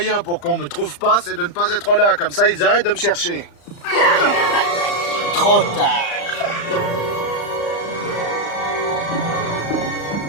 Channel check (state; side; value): late; right; 35 ms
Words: pour qu'on me trouve pas, c'est de ne pas être là. Comme ça, ils arrêtent de me chercher. Trop tard.